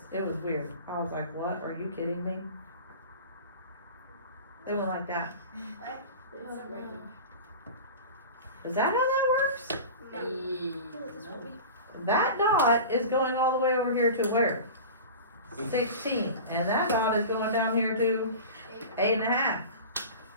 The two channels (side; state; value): both; inverted; correlation -0.33